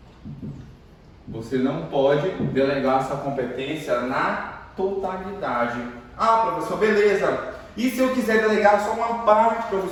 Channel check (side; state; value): both; identical; correlation 1.00